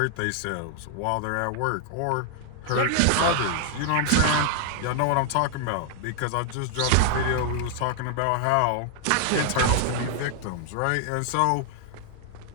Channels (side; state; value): both; different; correlation 0.00